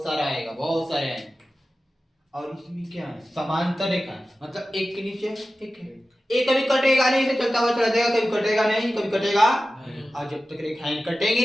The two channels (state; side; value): normal; both; correlation 0.95